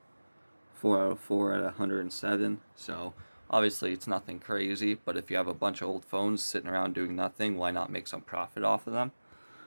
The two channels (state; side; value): inverted; both; correlation -1.00